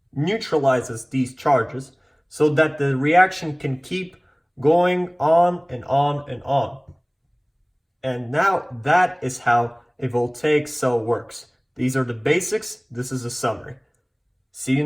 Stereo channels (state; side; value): identical; both; correlation 1.00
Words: neutralizes these charges so that the reaction can keep going on and on and on. And now that is how a voltaic cell works. These are the basics. This is a summary. See you